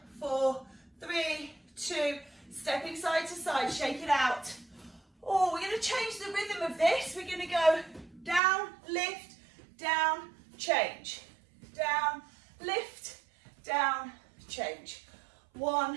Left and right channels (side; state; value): left; drops out; at 8.4 s